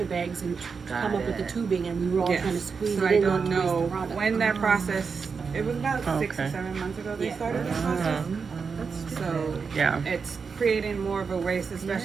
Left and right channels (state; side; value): quieter; left; 5.4 dB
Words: bags and come up with the tubing, and we were all Yes. trying to squeeze So it I in. don't not to waste the know product. when that process, it was about 6 or Okay. 7 months ago they Yeah. started this process. So Yeah. it's creating more of a waste,